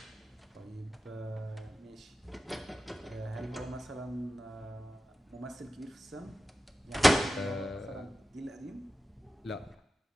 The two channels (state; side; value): normal; both; correlation 0.93